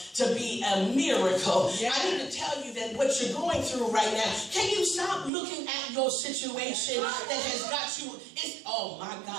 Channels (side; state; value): left; drops out; at 5.3 s